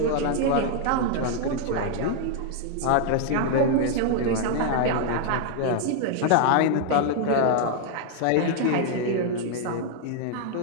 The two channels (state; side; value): different; both; correlation 0.00